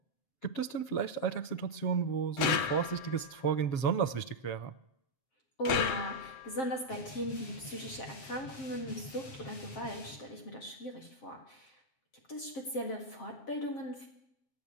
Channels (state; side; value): late; right; 7.5 ms